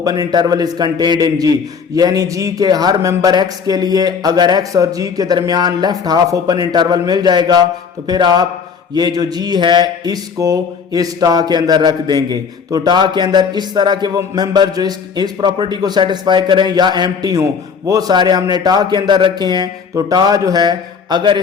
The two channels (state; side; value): quieter; right; 6.1 dB